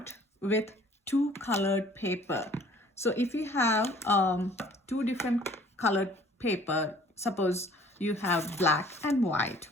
with two colored paper. So if you have two different colored paper, suppose you have black and white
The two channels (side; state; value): both; normal; correlation 0.53